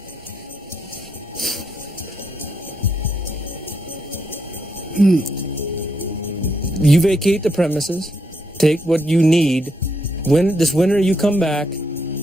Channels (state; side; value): normal; both; correlation 0.78